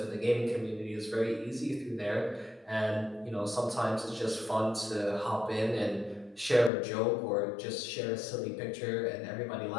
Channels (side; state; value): right; drops out; at 6.7 s